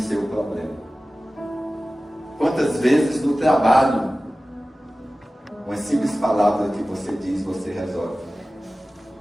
problema. Quantas vezes no trabalho, uma simples palavra que você diz, você resolve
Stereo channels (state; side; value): normal; both; correlation 0.96